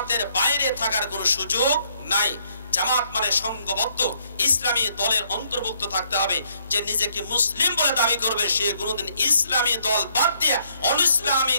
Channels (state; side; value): inverted; both; correlation -0.70